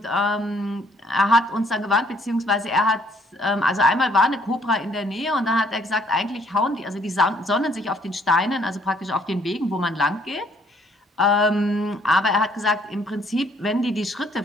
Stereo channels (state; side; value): normal; both; correlation 0.65